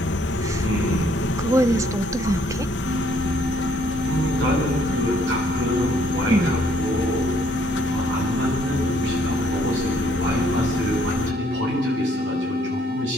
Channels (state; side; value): normal; both; correlation 0.66